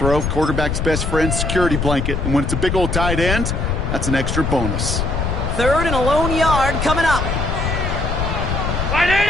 quarterback's best friend, security blanket. And when it's a big old tight end, that's an extra bonus. 3rd and a lone yard coming up.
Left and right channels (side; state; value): left; noise; rumble, 1 dB below the sound